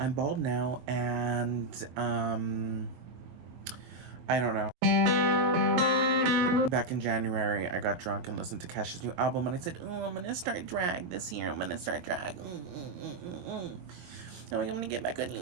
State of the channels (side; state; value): left; late; 22 ms